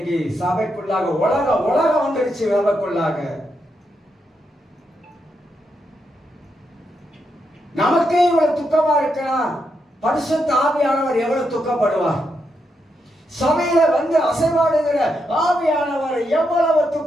சபைக்குள்ளாக உலகம் வந்துருச்சு. சபைக்குள்ளாக நமக்கே இவ்வளவு துக்கமா இருக்கலாம், பரிசுத்த ஆவியானவர் எவ்வளவு துக்கப்படுவார்? சபையில அசைவாடுகிற ஆவியானவர் எவ்வளவு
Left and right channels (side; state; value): both; normal; correlation 0.82